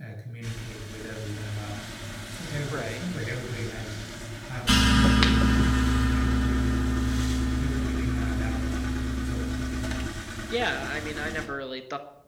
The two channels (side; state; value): both; identical; correlation 1.00